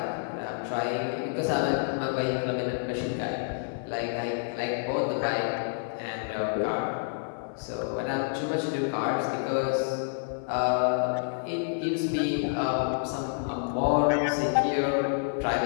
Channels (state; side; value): silent; right; 56 dB below the other